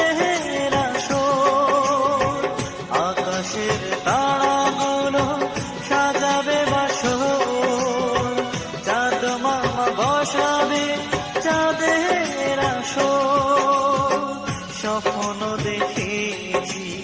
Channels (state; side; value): identical; both; correlation 1.00